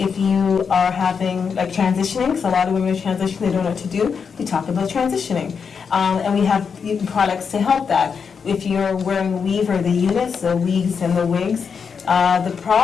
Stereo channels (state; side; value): quieter; right; 6.2 dB